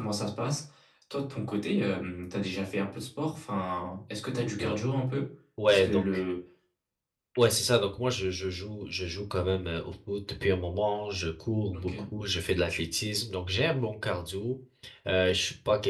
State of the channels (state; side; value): identical; both; correlation 1.00